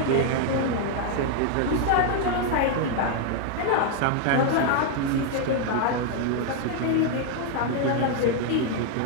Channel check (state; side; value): different; both; correlation 0.00